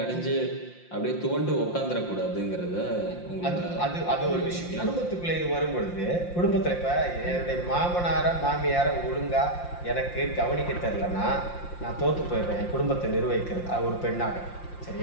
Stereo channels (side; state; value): right; late; 5.7 ms